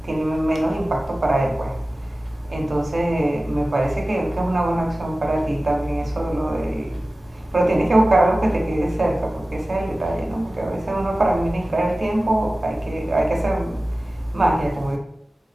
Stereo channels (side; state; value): both; normal; correlation 0.96